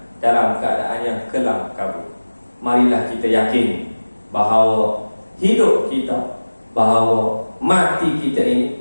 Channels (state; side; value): inverted; both; correlation -1.00